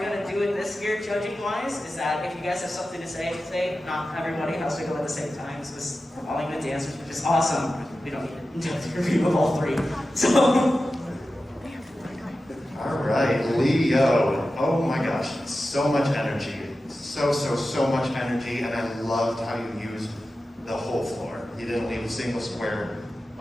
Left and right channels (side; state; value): both; normal; correlation 0.93